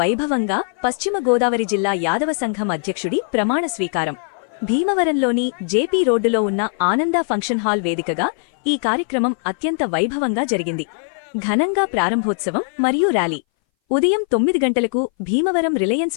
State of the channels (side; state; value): right; silent; 61 dB below the other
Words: పశ్చిమ గోదావరి జిల్లా యాదవ సంఘం అధ్యక్షుడి ప్రమాణ స్వీకారం. భీమవరంలోని జేపీ రోడ్డులో ఉన్న ఆనంద ఫంక్షన్ హాల్ వేదికగా ఈ కార్యక్రమం అత్యంత వైభవంగా జరిగింది. ఘనంగా ప్రారంభోత్సవం మరియు ర్యాలీ ఉదయం 9 గంటలకు భీమవరం